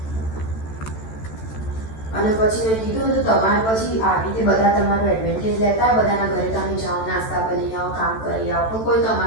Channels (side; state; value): right; late; 14 ms